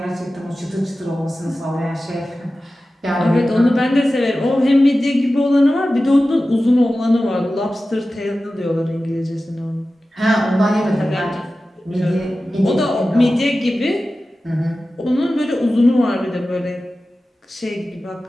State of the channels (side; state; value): both; normal; correlation 0.95